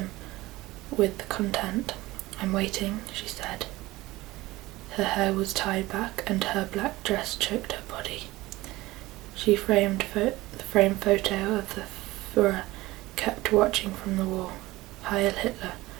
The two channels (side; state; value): left; quieter; 19.0 dB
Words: with contempt. I'm waiting, she said. Her hair was tied back and her black dress choked her body. She framed the framed photo of the Führer kept watching from the wall. Heil Hitler,